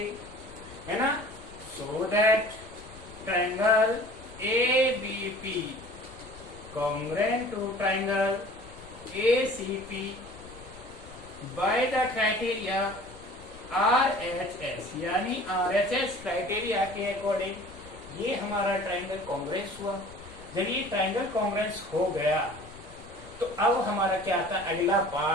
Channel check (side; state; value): left; noise; rumble, 19 dB below the sound